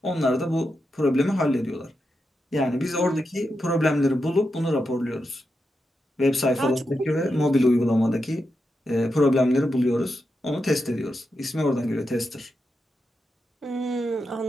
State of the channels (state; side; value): normal; both; correlation 0.87